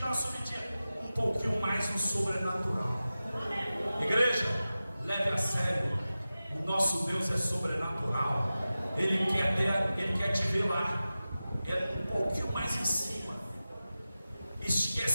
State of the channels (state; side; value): inverted; both; correlation -0.95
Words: uma subidinha um pouquinho mais no sobrenatural. Igreja, leve a sério. O nosso Deus é sobrenatural. Ele quer te ver lá, um pouquinho mais em cima,